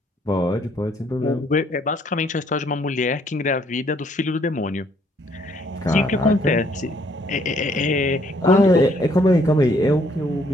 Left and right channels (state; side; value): normal; both; correlation 0.66